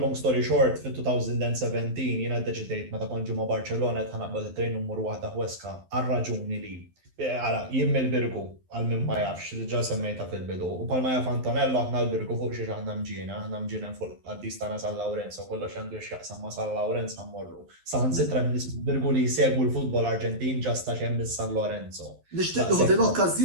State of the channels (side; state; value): left; late; 11 ms